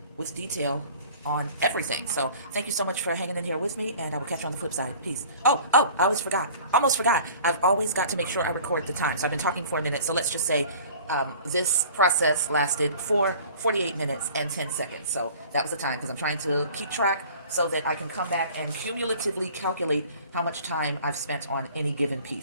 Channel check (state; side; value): inverted; both; correlation -0.46